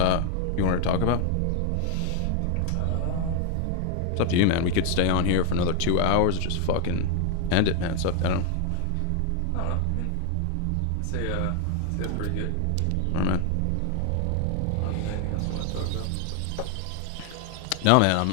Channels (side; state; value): both; different; correlation 0.00